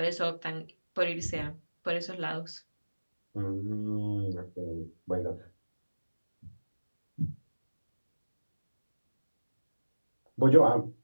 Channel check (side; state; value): both; inverted; correlation -1.00